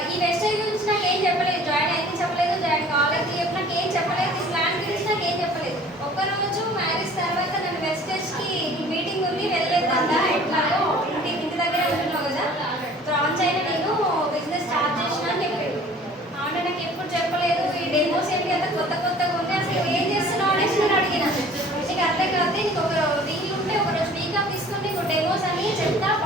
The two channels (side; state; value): both; normal; correlation 0.50